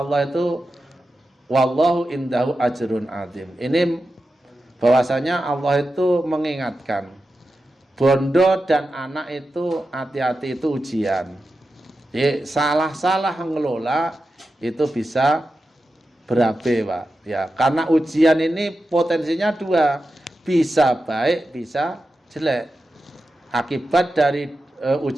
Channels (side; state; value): both; normal; correlation 0.91